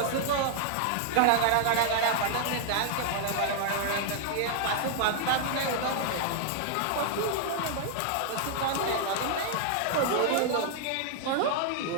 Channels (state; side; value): different; both; correlation 0.00